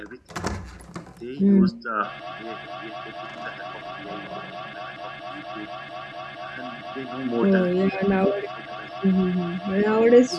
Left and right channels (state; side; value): identical; both; correlation 1.00